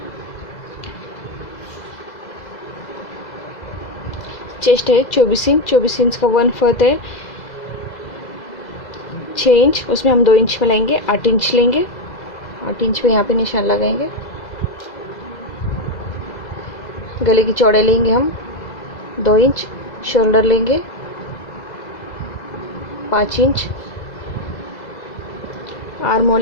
चेस्ट है 24 इंच, 24 इंच का 1/4 है 6 इंच, उसमें हम 2 इंच में लाएंगे, 8 इंच लेंगे, 8 इंच पे यहाँ पे निशान लगाएंगे। गले की चौड़ाई लेंगे हम 2 इंच, शोल्डर लेंगे 5 इंच, आर्म होल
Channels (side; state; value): right; late; 2.0 ms